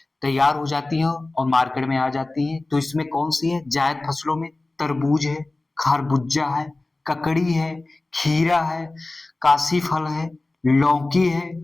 तैयार हो जाती है और मार्केट में आ जाती है। तो इसमें कौन सी है? जायद फसलों में तरबूज है, खरबूजा है, ककड़ी है, खीरा है, काशी फल है, लौकी है,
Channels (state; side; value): quieter; right; 3.0 dB